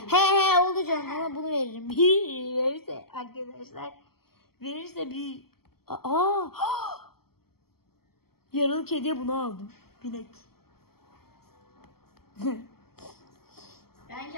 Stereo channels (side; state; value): right; late; 0.94 ms